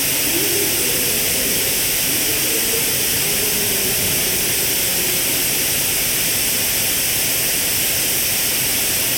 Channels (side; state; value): both; identical; correlation 1.00